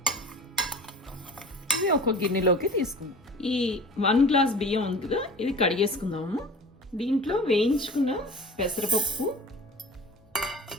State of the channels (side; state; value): both; normal; correlation 0.39